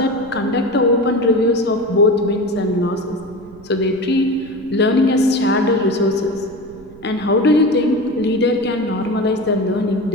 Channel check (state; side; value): noise; right; rumble, 22 dB below the sound